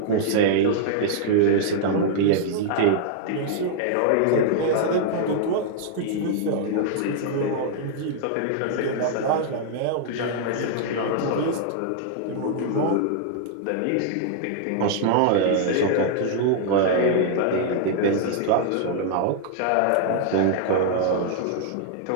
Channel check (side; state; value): both; different; correlation -0.01